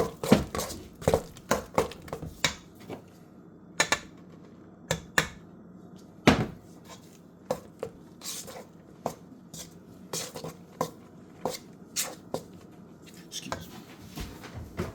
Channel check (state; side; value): identical; both; correlation 1.00